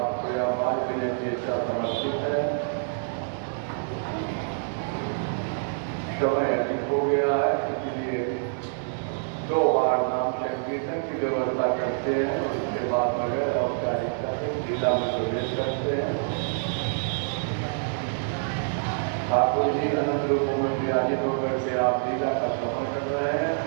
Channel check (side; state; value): left; silent; digital silence